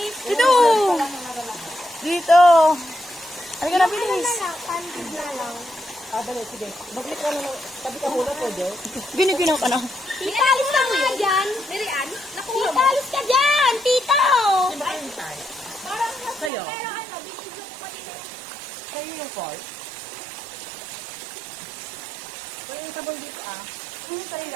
Dito! Dito! Halika na, bilis. Ano na lang, candid na lang. Ah, dali, sige. Mag-click ka na. Tabi ka hula, pwede. Binibinaw ka na. Tita, alis ka nga dyan. Mirian, nakuha mo. Tita, alis ka dyan, tita. Hindi ba kayo tayo? Parang mas Sa'yo? pero ano, binigyan ko pa din ng Kayo yung call. Kayo yung sabon dito, ah. Sa'yo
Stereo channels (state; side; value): drops out; left; at 16.5 s